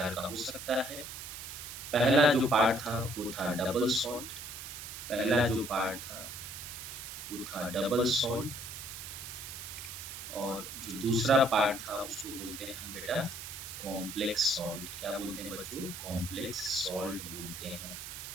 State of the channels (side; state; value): right; noise; hiss, 9 dB below the sound